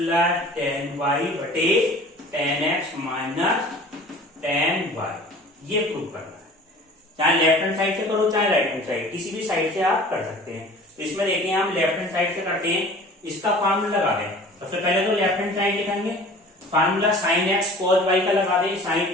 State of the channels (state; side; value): normal; both; correlation 0.45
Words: tan y बटे tan x minus tan y, ये प्रूव करना है। चाहे लेफ्ट हैंड साइड से करो चाहे राइट हैंड साइड, किसी भी साइड से आप कर सकते हैं। तो इसमें देखिए हम लेफ्ट हैंड साइड से करते हैं, इसका फार्मूला लगा दें। सबसे पहले तो लेफ्ट हैंड साइड लिखेंगे, formula sine x cos y का लगा दें, साइन